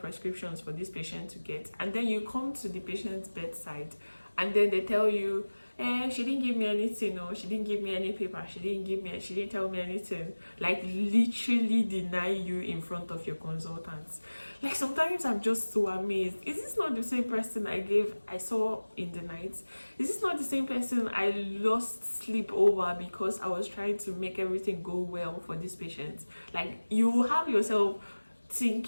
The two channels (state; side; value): inverted; both; correlation -1.00